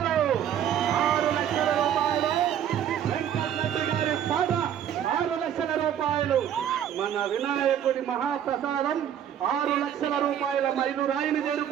6 లక్షల రూపాయలు. వెంకటరెడ్డి గారి పాట 6 లక్షల రూపాయలు. మన వినాయకుడి మహాప్రసాదం 6 లక్షల రూపాయల మైలురాయిని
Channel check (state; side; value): quieter; left; 9.8 dB